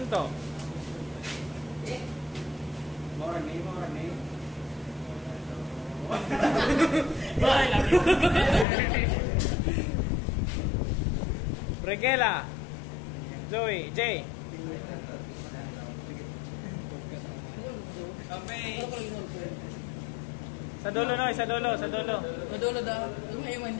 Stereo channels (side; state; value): right; drops out; at 8.7 s